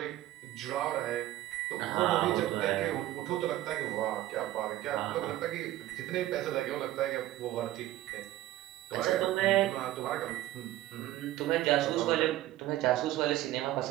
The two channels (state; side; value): quieter; left; 15.1 dB